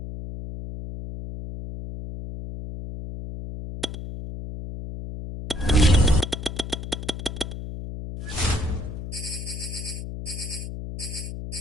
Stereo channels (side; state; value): left; noise; hum, 7 dB below the sound